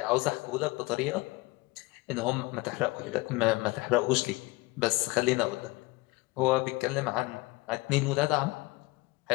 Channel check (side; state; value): right; quieter; 22.8 dB